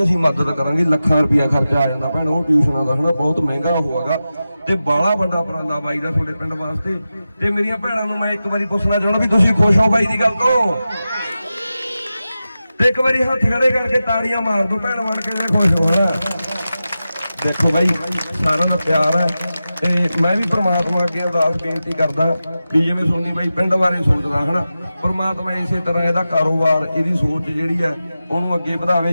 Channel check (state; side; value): inverted; both; correlation -0.93